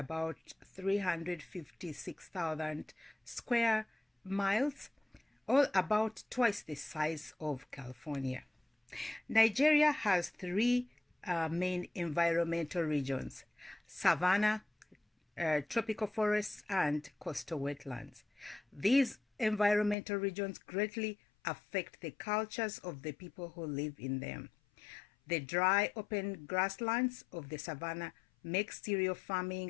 356,000 square miles, or about twice the size of California. Nigeria has three main environmental regions: Savannah, tropical forests, and coastal wetlands. These environmental regions greatly affect the cultures of the people who live in them. The dry, open grasslands of the savannah make stereo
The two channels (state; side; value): drops out; right; at 20.0 s